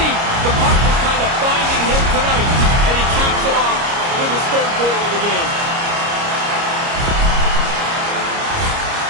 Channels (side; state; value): left; late; 29 ms